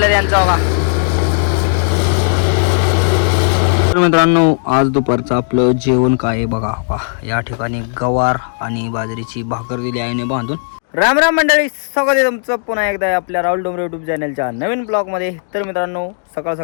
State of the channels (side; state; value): right; silent; digital silence